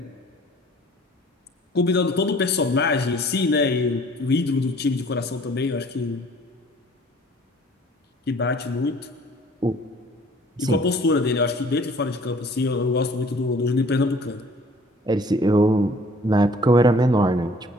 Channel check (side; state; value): both; normal; correlation 0.53